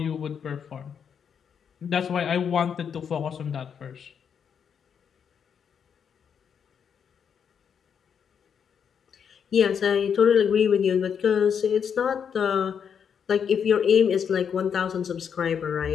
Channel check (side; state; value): right; quieter; 7.4 dB